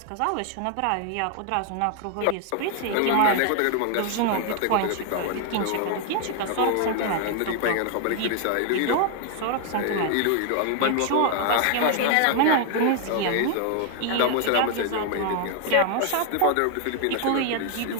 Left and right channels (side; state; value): both; different; correlation 0.00